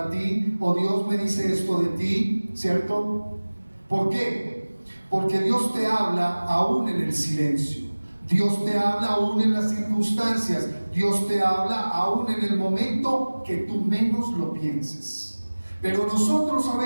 ti, o Dios me dice esto de ti, ¿cierto? ¿Por qué? Porque Dios te habla aún en el silencio. Dios te habla aún en las circunstancias. Dios te habla aún en el momento que tú menos lo pienses. Pero nosotros a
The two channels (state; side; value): inverted; both; correlation -1.00